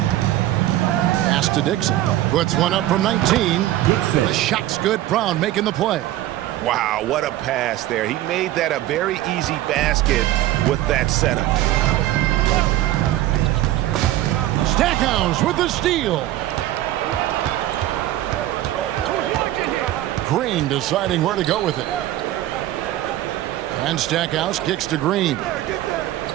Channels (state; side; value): quieter; left; 14.4 dB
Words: Pass to Dixon. Puts one up from 19. The shot's good. Brown making the play. Wow, what a pass there. He made that a very easy basket with that setup. Stackhouse with the steal. Green deciding where to go with it. And Stackhouse kicks to Green.